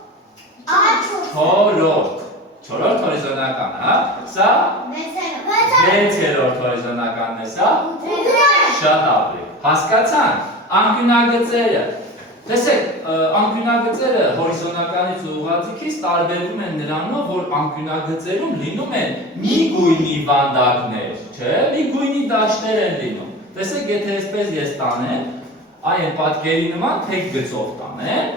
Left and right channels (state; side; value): normal; both; correlation 0.32